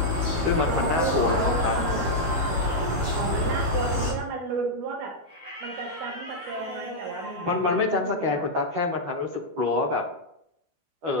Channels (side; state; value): left; late; 12 ms